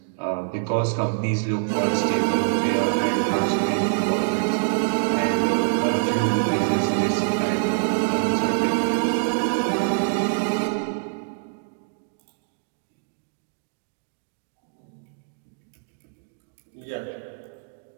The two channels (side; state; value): left; silent; digital silence